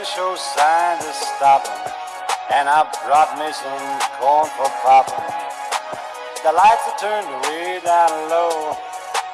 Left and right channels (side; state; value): both; identical; correlation 1.00